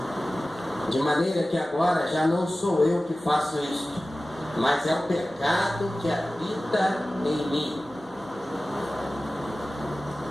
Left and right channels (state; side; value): normal; both; correlation 0.96